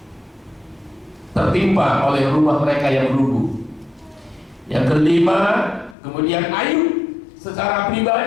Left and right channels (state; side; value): drops out; right; at 6.0 s